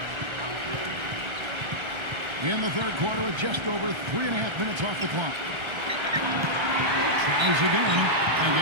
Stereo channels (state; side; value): late; left; 1.3 ms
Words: In the third quarter with just over 3.5 minutes off the clock. Tries again and